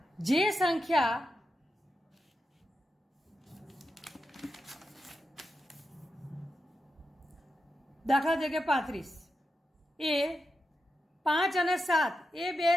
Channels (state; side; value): normal; both; correlation 0.88